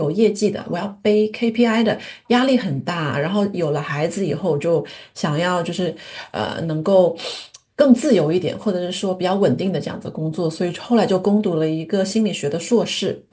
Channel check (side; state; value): both; identical; correlation 1.00